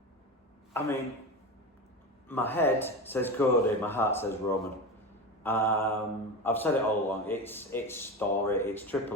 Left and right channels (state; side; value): normal; both; correlation 0.24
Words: I mean, my head says Cody, my heart says Roman. I've said it all along. It's story. It's